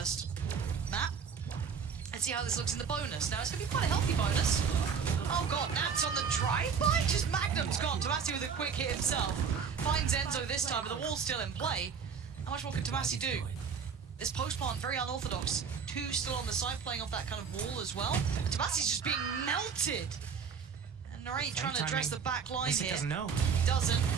map. Let's see how this looks in the bonus. Now, it's going to be quite a healthy bonus. Oh god, Nat's on the drive-by? Just Magnum's gone. Tomasi with a quick hit himself. Finds Enzo this time, but the wall's still in play. How much more can Tomasi do? This post-plant, very unorthodox. Two still on the side, playing off that kind of wall as well. And Tomasi's just being melted. And Narrate trying to address the back line here. He doesn't know. He doesn't,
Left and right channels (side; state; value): left; quieter; 6.4 dB